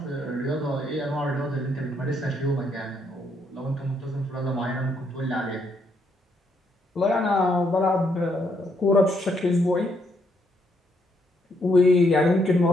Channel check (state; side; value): normal; both; correlation 0.74